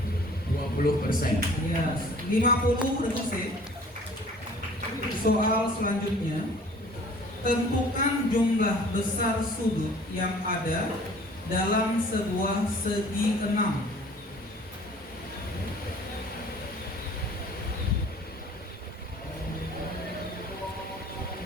20%. Ya, 50 Regu C. Soal selanjutnya, tentukan jumlah besar sudut yang ada dalam sebuah segi 6.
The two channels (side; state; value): both; normal; correlation 0.50